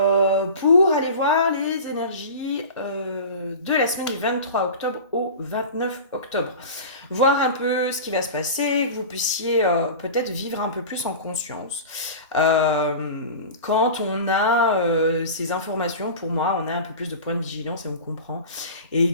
pour aller voir les énergies de la semaine du 23 octobre au 29 octobre. Voir un peu ce qui va se passer, que vous puissiez peut-être vivre un peu plus en conscience. Quand on a ces informations, pour moi, on a un peu plus de points de vigilance et on comprend. Et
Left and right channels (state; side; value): inverted; both; correlation -0.33